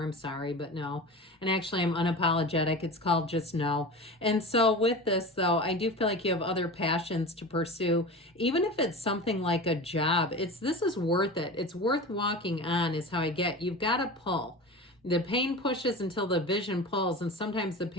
I'm sorry, but no. And actually I'm unapologetic. It's called just no. And so with this though, I do feel like you have other passions to pursue. Even if it's something like a job, this is worth it. It's worth walking on is how I get. You've got to pull. The pain pushes until the vision pulls, and sometimes the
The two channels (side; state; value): both; normal; correlation 0.31